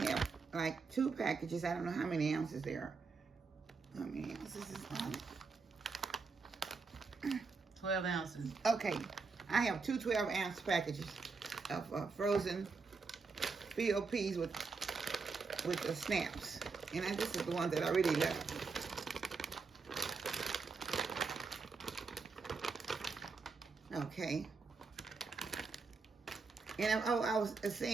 like 2 packages. I don't know how many ounces there are. How many ounces is on it? 12 ounces. Okay, I have 2 12-ounce packages of frozen field peas with the snaps, and this is the one that I really love. Okay. And I was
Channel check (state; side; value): quieter; left; 4.6 dB